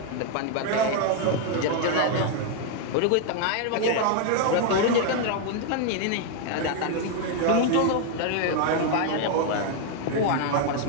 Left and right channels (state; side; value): different; both; correlation 0.00